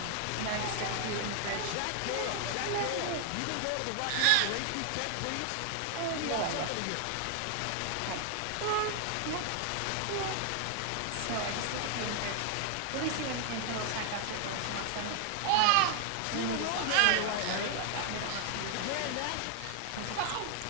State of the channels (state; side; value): different; both; correlation 0.00